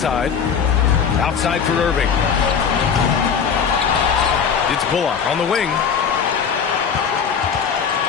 Outside for Irving. It's Bullock on the wing.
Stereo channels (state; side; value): quieter; right; 6.8 dB